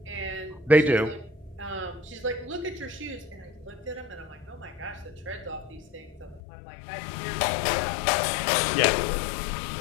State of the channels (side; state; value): right; drops out; at 6.4 s